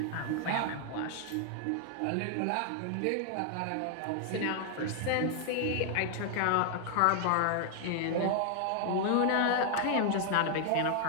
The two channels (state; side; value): different; both; correlation 0.00